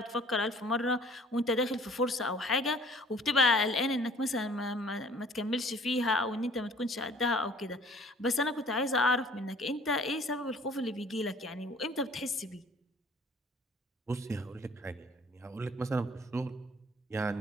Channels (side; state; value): both; normal; correlation 0.53